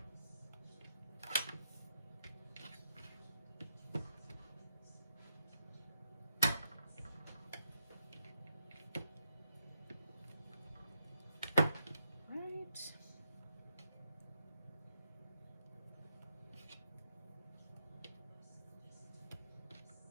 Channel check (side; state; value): both; inverted; correlation -0.81